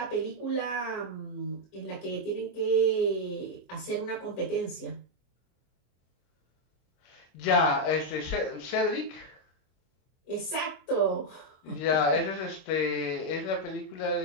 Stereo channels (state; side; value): late; right; 24 ms